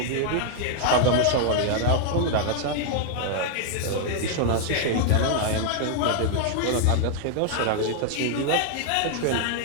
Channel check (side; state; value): both; different; correlation 0.00